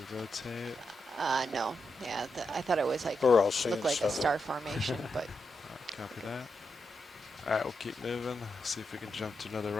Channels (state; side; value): normal; both; correlation 0.85